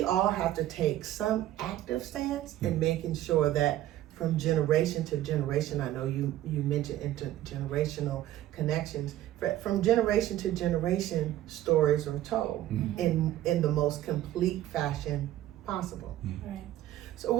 all have to take some active stance in making sure that from generation to generation, I know you mentioned intergenerational connections, from generation to generation, stories are told in the most complete fashion possible. Right. So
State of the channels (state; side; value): quieter; left; 13.7 dB